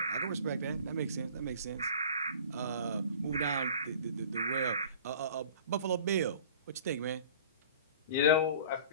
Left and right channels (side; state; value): both; inverted; correlation -0.45